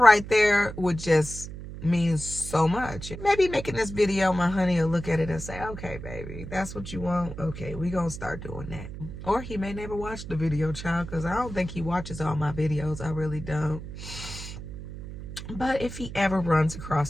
right there would just mean so much. Maybe making this video, my honey will look at it and say, okay, baby, that's what you want. Okay, we gonna start doing that. Or he may never watch the video, child, because I don't think he watches all my videos. I really don't. But if he ever runs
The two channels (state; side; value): noise; right; hum, 10 dB below the sound